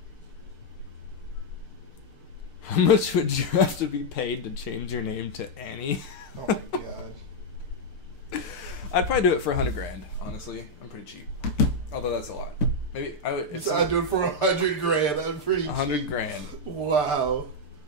How much would you have to be paid to change your name to Annie? Oh my god. I'd probably do it for $100,000. Honestly, I'm pretty cheap. Although that's a lot. Maybe I would. So I'd do it for $100,000. I'm pretty cheap. $100,000. Wow.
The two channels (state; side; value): late; right; 6.8 ms